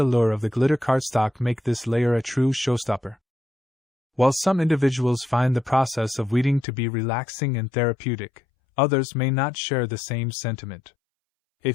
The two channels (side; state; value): right; drops out; at 6.7 s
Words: of the glitter cardstock make this layer a true showstopper. While some individuals find the process of weeding to be relaxing and therapeutic, others may not share the same sentiment.